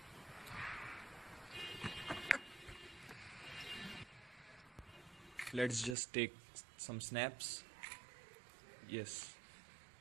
Let's just take some snaps. Yes,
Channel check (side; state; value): left; drops out; at 6.0 s